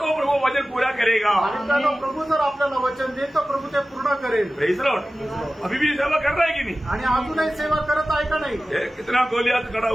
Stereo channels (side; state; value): both; normal; correlation 0.96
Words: प्रभु वचन पूरा करेगा. आणि त्यानं प्रभू जर आपल्याला वचन देईल तर प्रभू ते पूर्ण करेल. Praise Lord. अभी भी सेवा कर रहा है कि नहीं? आणि अजूनही सेवा करत आहे का नाही? ये कितना गोलियात खड़ा